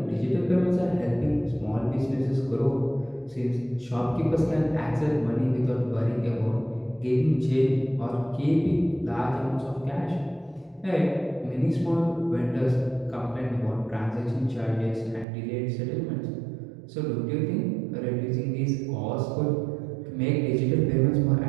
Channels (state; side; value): drops out; left; at 15.2 s